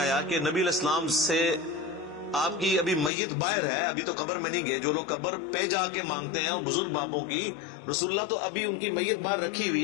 کہ نبی علیہ السلام سے آپ کی ابھی میت باہر ہے، ابھی تو قبر میں نہیں گئے، جو لوگ قبر پہ جا کے مانگتے ہیں اور بزرگ باپوں کی، رسول اللہ تو ابھی ان کی میت باہر رکھی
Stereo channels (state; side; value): drops out; right; at 3.1 s